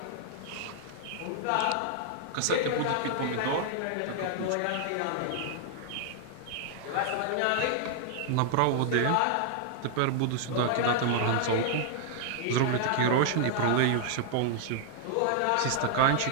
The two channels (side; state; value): both; different; correlation -0.01